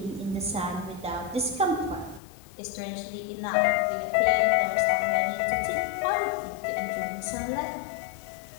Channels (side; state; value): right; drops out; at 2.2 s